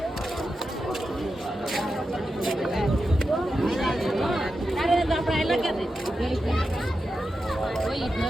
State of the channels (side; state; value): both; normal; correlation 0.89